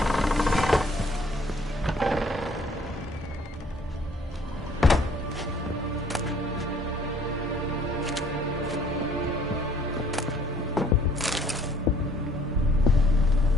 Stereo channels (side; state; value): both; normal; correlation 0.59